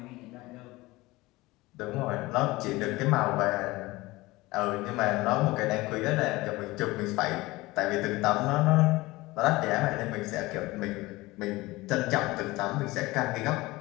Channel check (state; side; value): quieter; right; 20.4 dB